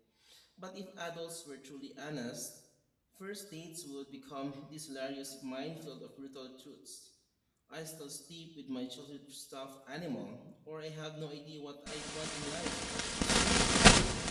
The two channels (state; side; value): identical; both; correlation 1.00